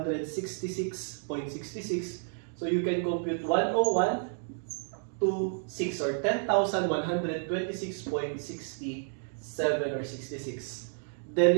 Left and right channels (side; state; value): left; silent; digital silence